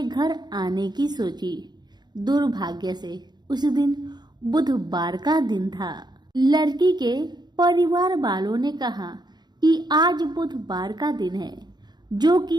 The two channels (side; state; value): left; late; 0.21 ms